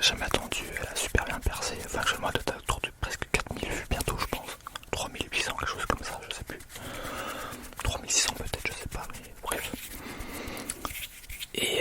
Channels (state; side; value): identical; both; correlation 1.00